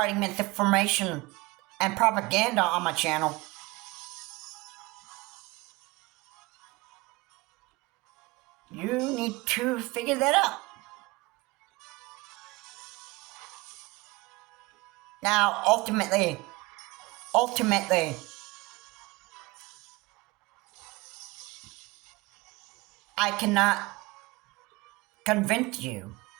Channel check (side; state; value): left; quieter; 23.0 dB